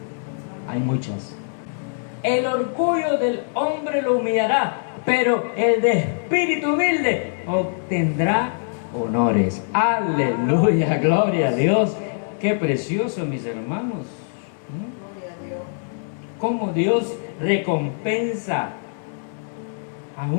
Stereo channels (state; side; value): silent; right; digital silence